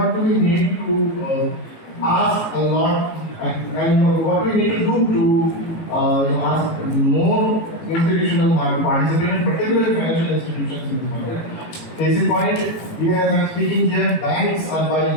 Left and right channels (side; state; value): right; late; 18 ms